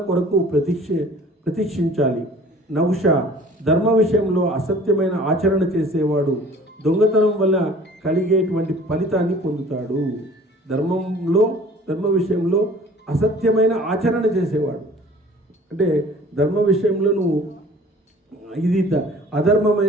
కొరకు ప్రతీక్షించాలి. నహుష, ధర్మ విషయంలో అసత్యమైన ఆచరణ చేసేవాడు దొంగతనం వల్ల కలిగేటువంటి ఫలితాన్ని పొందుతాడు. ధర్మ విషయంలో అసత్యమైన ఆచరణ చేసేవాడు అంటే ధర్మ విషయంలో నువ్వు ఇది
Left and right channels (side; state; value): both; normal; correlation 0.49